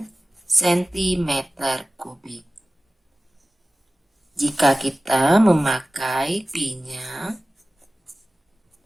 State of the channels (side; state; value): both; normal; correlation 0.97